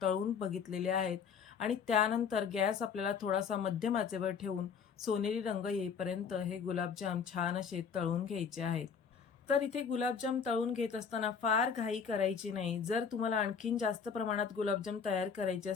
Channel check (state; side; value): quieter; right; 6.5 dB